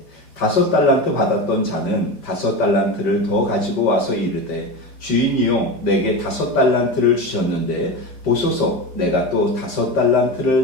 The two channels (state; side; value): late; right; 5.1 ms